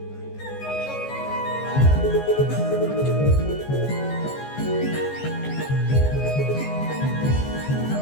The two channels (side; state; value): right; late; 15 ms